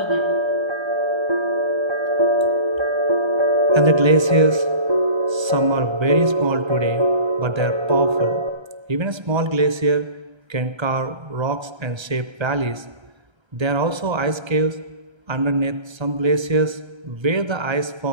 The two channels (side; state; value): left; late; 1.3 ms